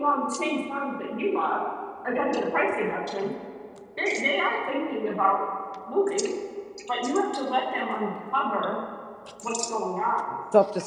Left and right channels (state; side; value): identical; both; correlation 1.00